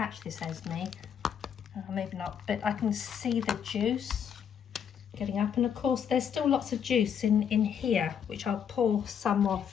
this, Esme, maybe not, but I can see the juice getting up, and of course there's still lots of juice in here, which I'll pour some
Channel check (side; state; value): right; quieter; 8.0 dB